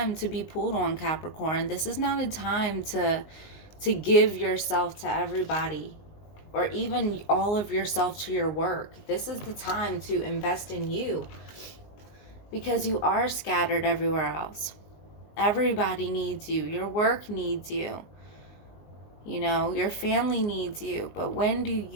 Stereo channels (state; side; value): late; right; 19 ms